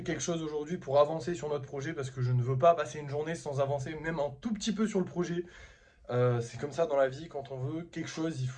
quelque chose aujourd'hui pour avancer sur notre projet parce que je ne veux pas passer une journée sans avancer même un tout petit peu sur le projet. C'est comme ça dans la vie, quand on veut quelque chose, il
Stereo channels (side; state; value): both; identical; correlation 1.00